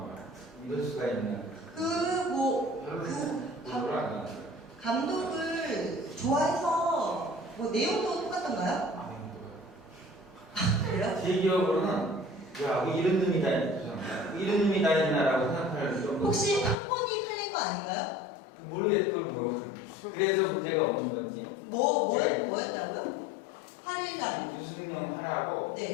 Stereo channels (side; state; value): right; drops out; at 16.8 s